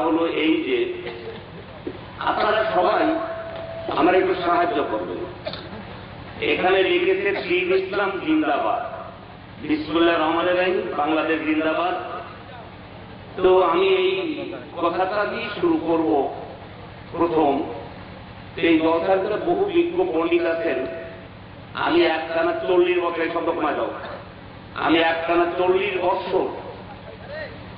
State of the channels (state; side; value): identical; both; correlation 1.00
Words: হলো এই যে আপনারা সবাই আমার একটু সাহায্য করবেন। এখানে লিখেছে দীন ইসলাম জিন্দাবাদ, বিসমিল্লাহির রহমানির রহিম, বাংলাদেশ জিন্দাবাদ। তো আমি এই কথাটা দিয়ে শুরু করব। প্রথম, এই জলসার ভিতরে বহু বিজ্ঞ পণ্ডিত আছেন। আমি একটানা 40 বছর, এই শব্দ কমা যাও, আমি একটানা 40 বছর